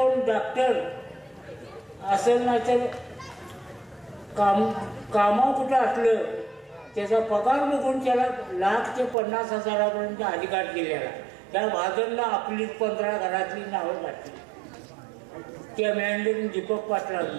डॉक्टर असेल नाही तर कामा कुठं असलं त्याचा पगार बघून त्याला 1 लाख ते 50 हजारापर्यंत अधिकार दिलेला. त्या भाजपला आपली 15 घरातली नावं घातली. त्या मॅनेजर दीपक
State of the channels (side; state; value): left; drops out; at 9.2 s